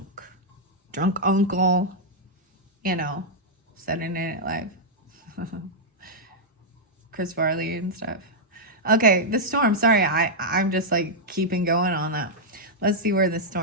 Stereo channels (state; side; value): normal; both; correlation -0.07